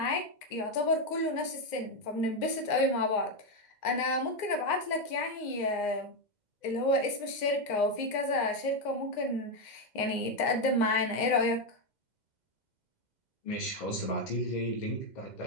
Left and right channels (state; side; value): late; right; 2.0 ms